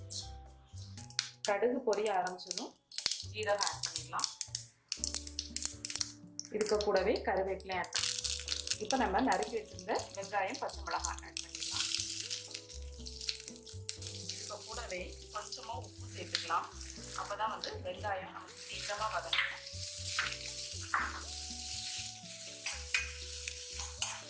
கடுகு பொரிய ஆரம்பிச்சதும் ஜீரகம் ஆட் பண்ணிடலாம். இதுக்கு கூடவே கருவேப்பிலை ஆட் பண்ணிடலாம். இப்போ நம்ம நறுக்கி வச்சிருந்த வெங்காயம் பச்சை மிளகாய் ஆட் பண்ணிடலாம். இப்போ கூடவே கொஞ்சமாக உப்பு சேர்த்துக்கலாம். அப்போ தான் வந்து வெங்காயம் நமக்கு சீக்கிரமாக வதங்கும்.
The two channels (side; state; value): both; identical; correlation 1.00